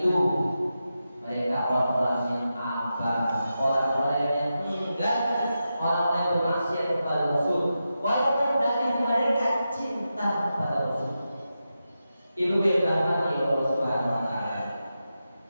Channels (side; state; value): both; inverted; correlation -0.90